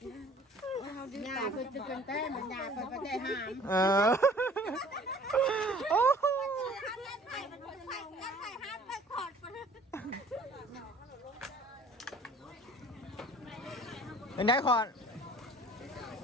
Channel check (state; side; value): normal; both; correlation 0.50